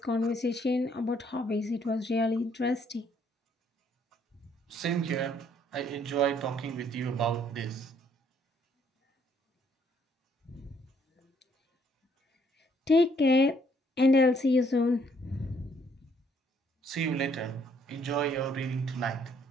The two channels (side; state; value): both; normal; correlation 0.67